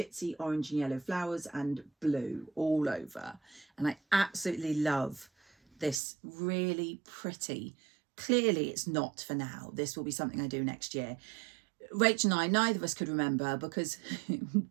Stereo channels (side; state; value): left; drops out; at 6.0 s